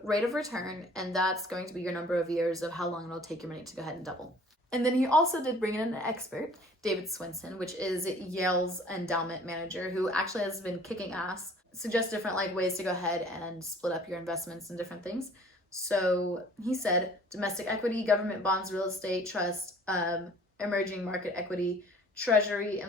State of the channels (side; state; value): both; normal; correlation 0.52